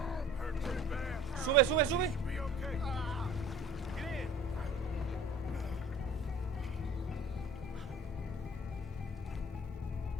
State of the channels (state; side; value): normal; both; correlation 0.47